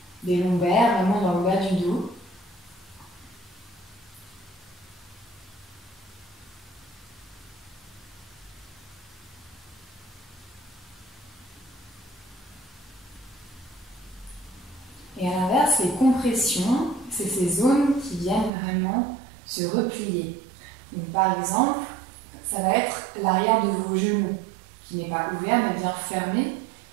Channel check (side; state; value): left; drops out; at 18.5 s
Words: des lombaires, vraiment dans le bas du dos. Et à l'inverse, les compressions, c'est ces zones qui viennent vraiment se replier. Donc, par exemple, ça va être l'arrière de vos genoux, qui n'est pas ouvert mais bien fermé,